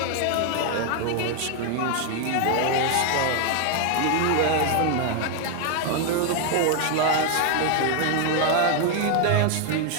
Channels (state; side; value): different; both; correlation 0.01